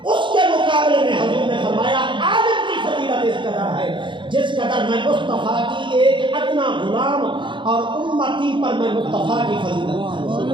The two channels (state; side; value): late; left; 0.23 ms